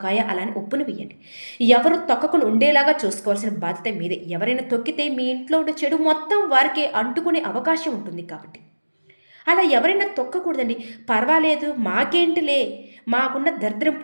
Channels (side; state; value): both; inverted; correlation -1.00